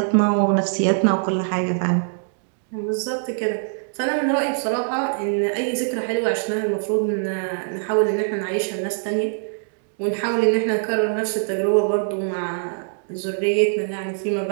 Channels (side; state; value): left; silent; digital silence